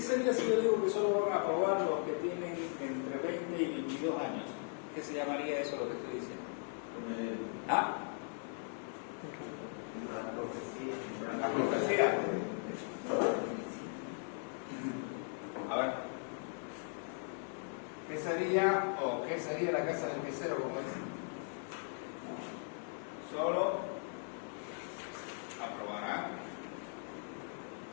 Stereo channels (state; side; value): silent; right; 52 dB below the other